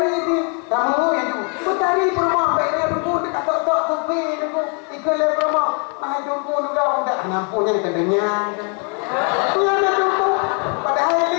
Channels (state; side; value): quieter; right; 38.4 dB